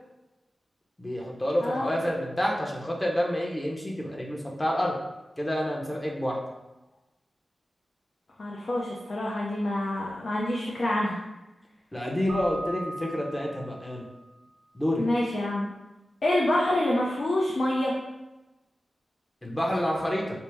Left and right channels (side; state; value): both; normal; correlation 0.94